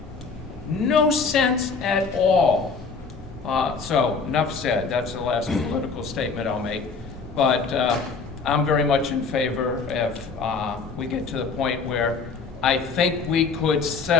No sense at all. So, enough said. That's the last political statement I'll make. But I'm very much in favor if we get to the point where I think we could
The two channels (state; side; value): quieter; right; 4.8 dB